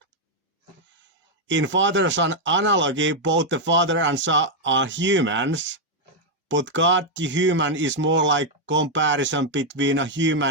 In father-son analogy, both the father and son are humans, but God the human is more like comparison between a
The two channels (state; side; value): normal; both; correlation 0.00